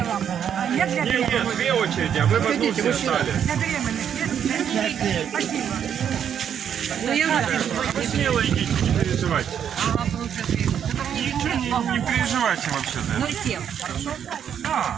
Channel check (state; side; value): quieter; left; 8.7 dB